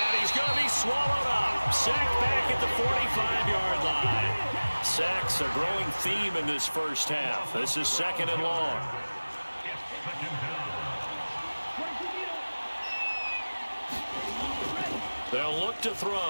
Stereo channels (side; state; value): both; inverted; correlation -1.00